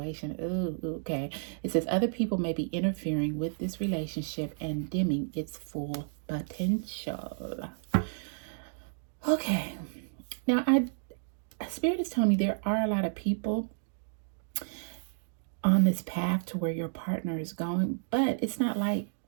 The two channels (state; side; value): silent; left; digital silence